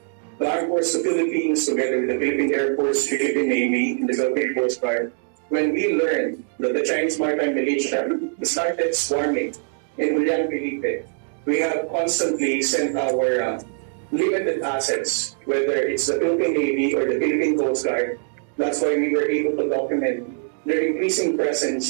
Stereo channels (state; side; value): silent; left; digital silence